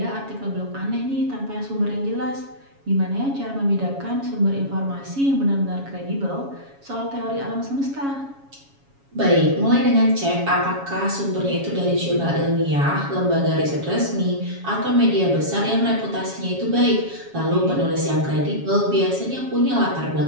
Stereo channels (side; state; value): left; late; 7.2 ms